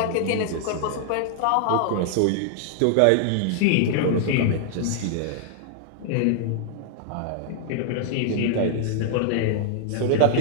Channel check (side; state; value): both; different; correlation -0.01